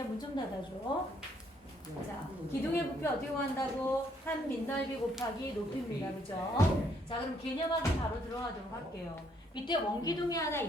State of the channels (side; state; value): both; normal; correlation 0.69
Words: 문 좀 닫아줘. 자, 기둥의 부피 어떻게 구한다고? 한 밑넓이 곱하기 높이입니다. 그죠? 자, 그럼 개념하기 바로 들어가도록 할게요. 밑에 원기둥이 하나